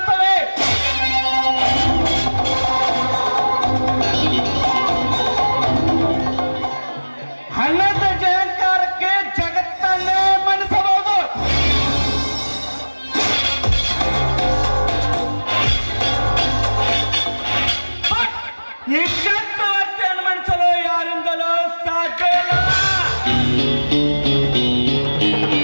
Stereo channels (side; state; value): both; inverted; correlation -1.00